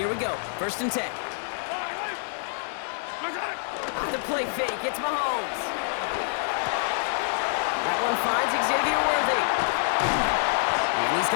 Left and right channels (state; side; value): silent; right; 59 dB below the other